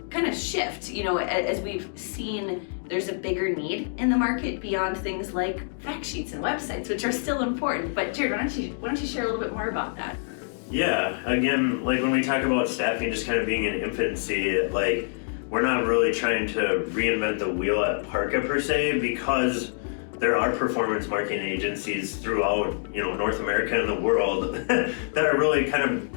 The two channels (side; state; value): right; silent; digital silence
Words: of shift, as we've seen there's a bigger need in the market beyond things like fact sheets and websites, which are still important. But Jared, why don't you share a little bit more about that? Yeah, again, like when we talk about staffing just kind of being in infancy, like we're not really trying to reinvent the wheel at Parqa per se, because there are performance marketing agencies throughout, North America and the world that are really kind